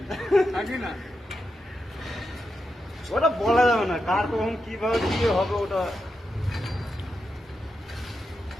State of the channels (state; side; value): normal; both; correlation 0.87